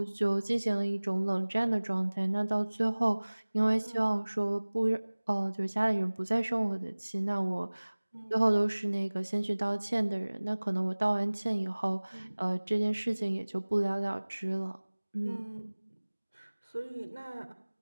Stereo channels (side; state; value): both; inverted; correlation -1.00